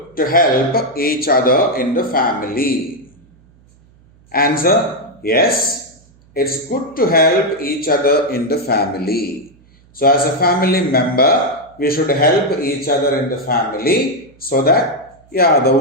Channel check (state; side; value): noise; right; hum, 30 dB below the sound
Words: to help each other in the family? Answer, yes. It's good to help each other in the family. So as a family member, we should help each other in the family so that, the